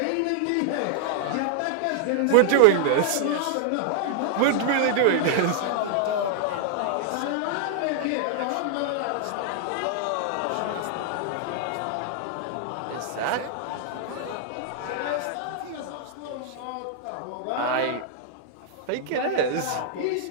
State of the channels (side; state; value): both; different; correlation -0.01